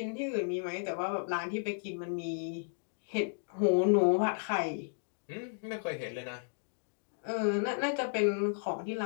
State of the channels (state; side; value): silent; right; digital silence